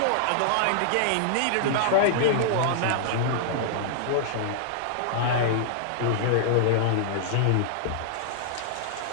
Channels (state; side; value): different; both; correlation -0.01